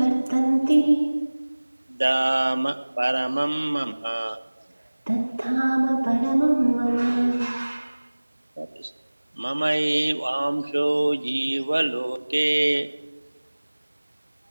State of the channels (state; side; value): inverted; both; correlation -1.00